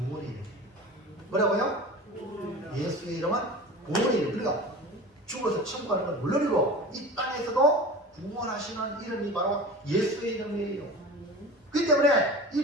이름. 뭐라고요? 예수의 이름은 구원의 이름. 그러니까 죽어서 천국 가는 걸 물론이고 이 땅에서도 구원하시는 이름이 바로 예수의 이름이에요. 그렇기 때문에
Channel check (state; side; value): normal; both; correlation 0.35